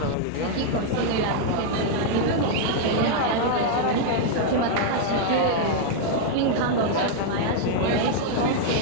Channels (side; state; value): both; different; correlation -0.01